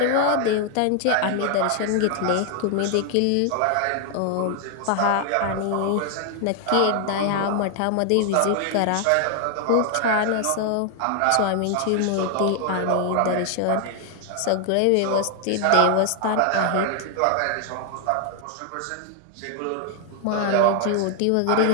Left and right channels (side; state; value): both; different; correlation 0.00